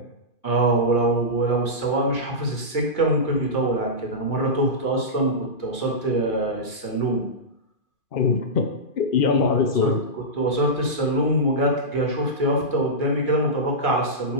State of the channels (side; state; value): right; late; 2.4 ms